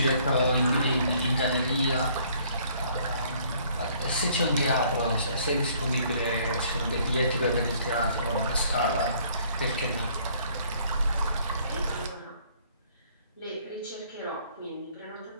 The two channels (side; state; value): both; inverted; correlation -0.61